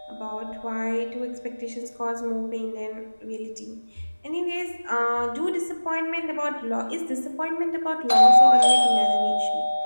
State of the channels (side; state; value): both; inverted; correlation -1.00